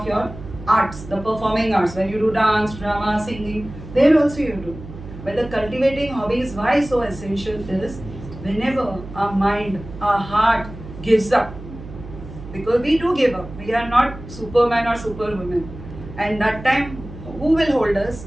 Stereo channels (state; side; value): noise; right; hum, 14 dB below the sound